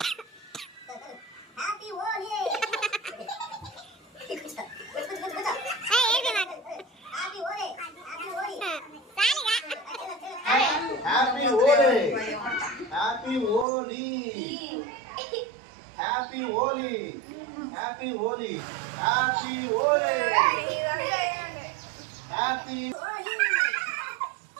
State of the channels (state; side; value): drops out; left; at 13.7 s